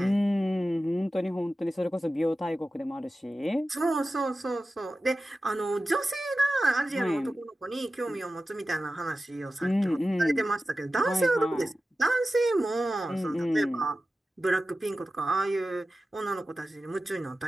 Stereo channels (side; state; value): both; normal; correlation 0.94